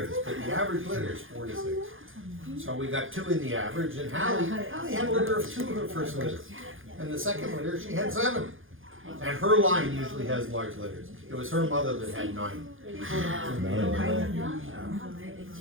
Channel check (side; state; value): left; late; 0.58 ms